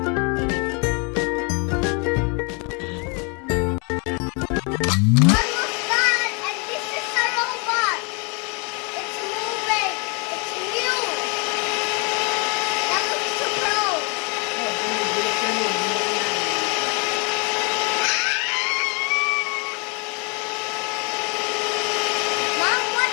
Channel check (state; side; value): quieter; right; 33.8 dB